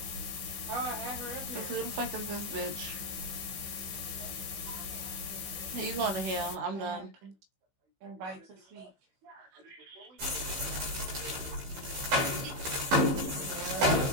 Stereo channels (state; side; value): late; left; 15 ms